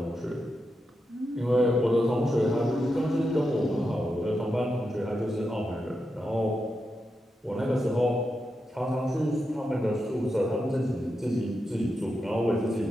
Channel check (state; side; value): normal; both; correlation 0.87